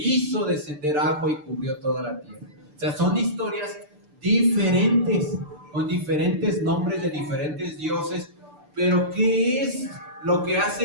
descender agua y cubrió toda la tierra. O sea, son historias diferentes, con diferentes nombres de diferentes dioses, pero ¿qué es lo que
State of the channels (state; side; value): late; left; 6.8 ms